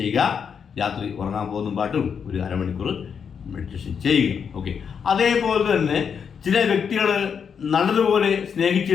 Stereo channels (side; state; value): right; quieter; 6.9 dB